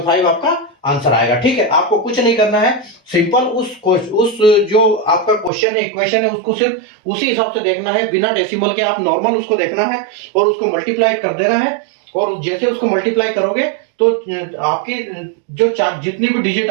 आपका आंसर आएगा। ठीक है, आपको कुछ नहीं करना है, सिंपल उस जो आपका क्वेश्चन है, इक्वेशन है, उसको सिर्फ उसी हिसाब से देखना है, बिना डेसिमल के आप नॉर्मल उसको देखना है और उसको मल्टीप्लाई कर देना है। और जैसे उसको मल्टीप्लाई करोगे तो आपकी जो जितनी भी डिजिट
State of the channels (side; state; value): left; drops out; at 5.5 s